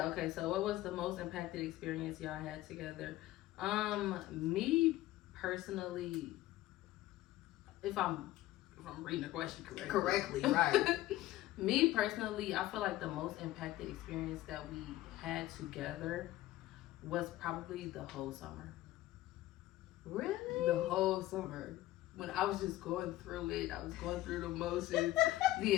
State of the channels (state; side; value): quieter; right; 15.9 dB